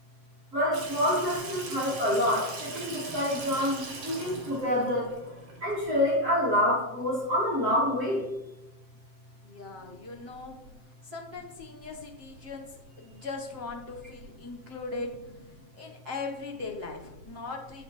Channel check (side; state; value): left; late; 7.6 ms